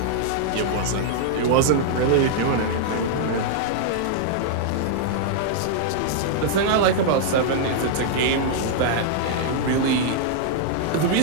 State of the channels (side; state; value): both; different; correlation -0.01